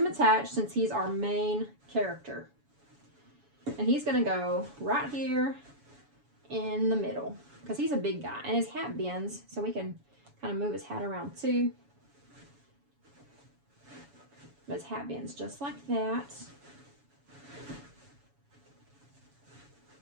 attached since he's our main character. And he's going to go right here in the middle because he's a big guy and his hat bends, so we can kind of move his hat around too. But his hat bends just like that.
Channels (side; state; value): left; late; 7.1 ms